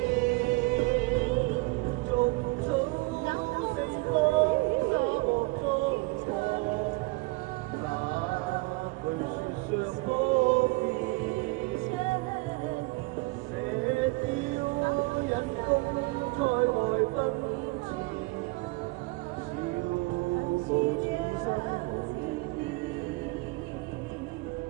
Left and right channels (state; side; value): quieter; left; 24.9 dB